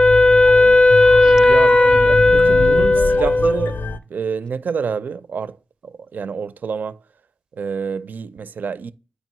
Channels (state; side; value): normal; both; correlation 0.94